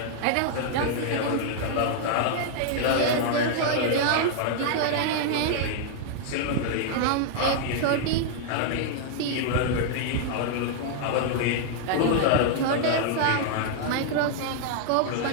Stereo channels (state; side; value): different; both; correlation -0.01